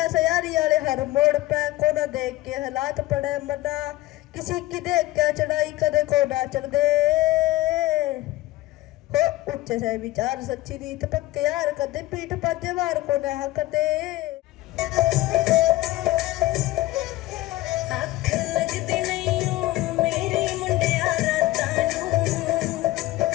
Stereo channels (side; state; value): right; quieter; 17.4 dB